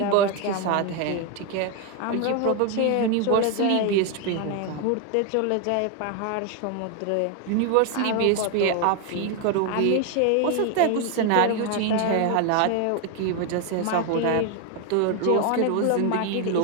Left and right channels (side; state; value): both; different; correlation 0.01